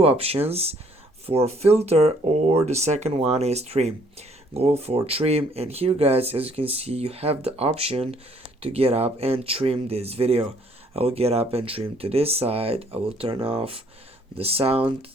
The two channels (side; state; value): both; normal; correlation 0.63